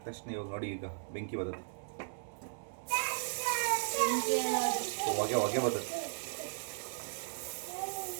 ತಕ್ಷಣ ಇವಾಗ ನೋಡಿ, ಈಗ ಬೆಂಕಿ ಬರುತ್ತೆ, ಹೊಗೆ ಬರುತ್ತೆ.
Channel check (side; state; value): left; silent; 54 dB below the other